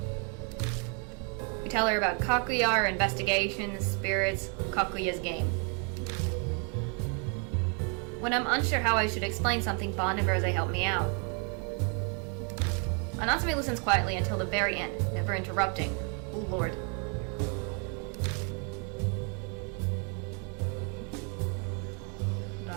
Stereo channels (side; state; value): left; quieter; 38.2 dB